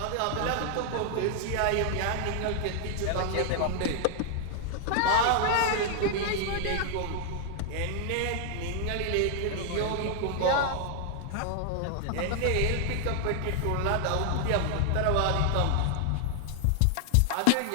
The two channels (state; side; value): different; both; correlation 0.00